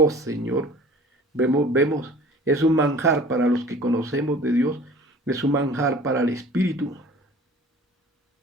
Señor, Vemos, es un manjar para los que conocemos de Dios, es un manjar para el espíritu,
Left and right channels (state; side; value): normal; both; correlation 0.45